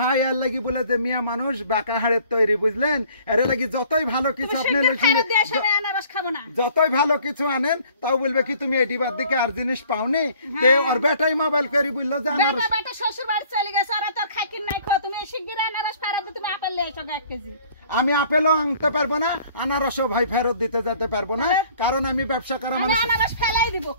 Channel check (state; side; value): inverted; both; correlation -0.55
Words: আর লাগি বলে যে মিয়া মানুষ বাঁকা হাড়ের তৈরি বুঝলেন এর লাগি যতই ভালো কিছু আপনি যতই ভালো কিছু আনেন তাও বলবে কি তুমি এডি বাদ দিকে আর জিনিস পাওনি তে আর বেটাই মোবাইল করি বললো যে আনারস বেটা শ্বশুর বাড়ি চলে গেছে আর তোর খাইকিন নাই খো তুমি শিগগির আনারস পারাতে তুমি আপেল লেছো 1 কেজি আমি আপেলও আনতে পারবো না আনারসও ভাই ফেরত দিতে যেতে পারবো না কারণ আমি ব্যবসা করা মানুষ আনারস ফেলাই দিব